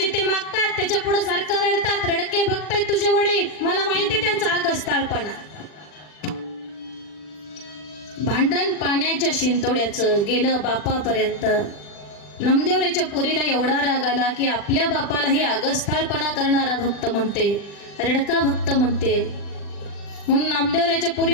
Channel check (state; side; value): late; right; 40 ms